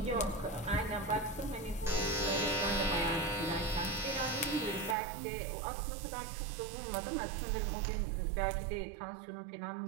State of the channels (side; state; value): left; drops out; at 5.0 s